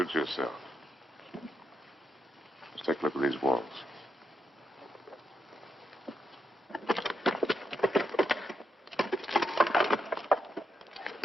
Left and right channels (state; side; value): normal; both; correlation 0.82